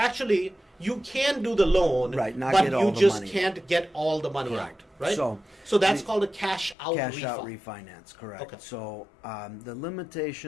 you can do the loan, Right, not but get all you the just money. can't get all the money Correct. out, right? So that's called a cash out Cash refi. out refinance, correct. Okay. So the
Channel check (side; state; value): right; drops out; at 6.8 s